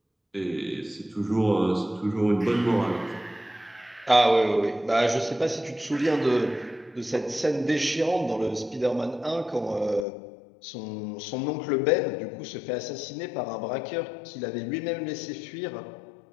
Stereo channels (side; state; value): right; drops out; at 10.1 s